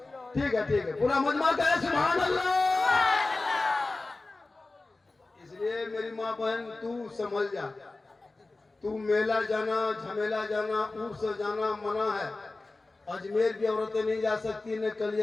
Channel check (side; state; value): right; quieter; 3.3 dB